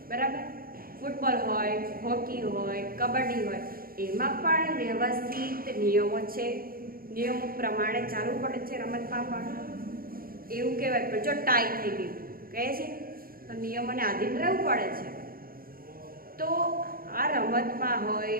બરાબર, ફૂટબોલ હોય, હોકી હોય, કબડ્ડી હોય, એમાં પણ વ્યવસ્થિત નિયમો છે. નિયમો પ્રમાણે ચાલવું પડે છે. રમતમાં પણ એવું કહેવાય કે જો ટાઈ થઈ ગઈ કહે છે તો નિયમોને આધીન રહેવું પડે છે. તો આ રમતમાં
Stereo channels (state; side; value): late; left; 0.42 ms